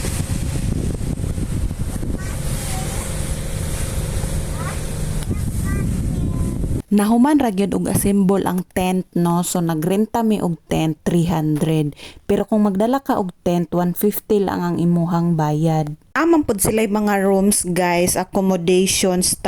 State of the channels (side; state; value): both; identical; correlation 1.00